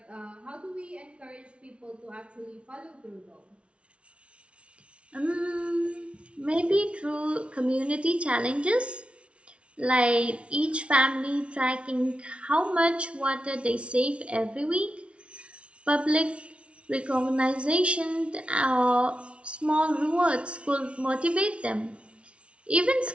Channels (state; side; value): late; left; 0.060 ms